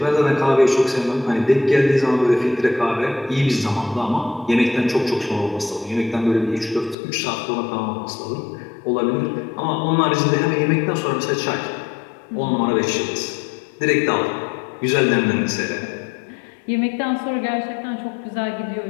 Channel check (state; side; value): drops out; right; at 7.0 s